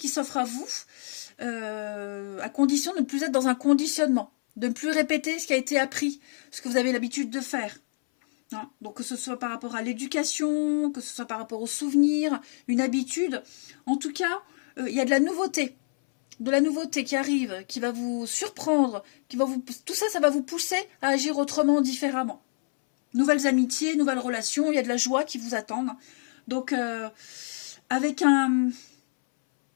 s'offrent à vous, à condition de ne plus être dans un conditionnement, de ne plus répéter ce qui a été appris, ce que vous avez l'habitude de faire. Donc, que ce soit par rapport à l'éducation, que ce soit par rapport aux souvenirs, une habitude. En tout cas, il y a de la nouveauté. De la nouveauté qui arrive, qui va vous surprendre, tout ça, ça va vous pousser à agir autrement, différemment. Nouvelles amitiés, nouvelles relations, il y a de la joie qui vous attend. Donc, avec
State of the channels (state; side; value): silent; right; 60 dB below the other